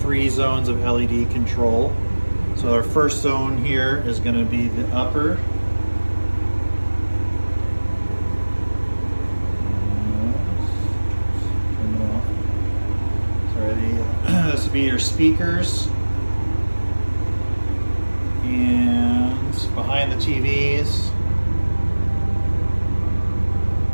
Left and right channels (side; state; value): both; inverted; correlation -1.00